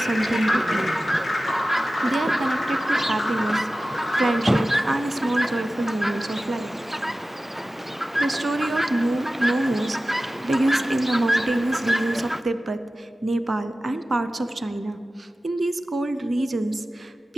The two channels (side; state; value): both; normal; correlation 0.95